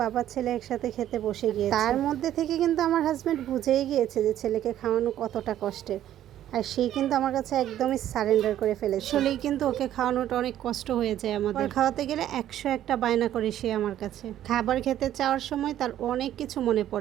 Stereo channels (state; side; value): quieter; left; 11.9 dB